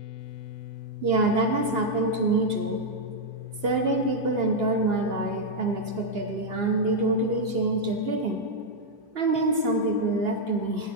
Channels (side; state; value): left; late; 2.8 ms